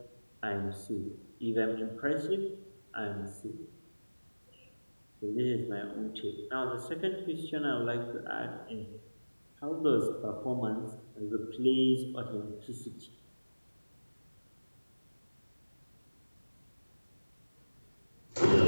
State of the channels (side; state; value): both; inverted; correlation -1.00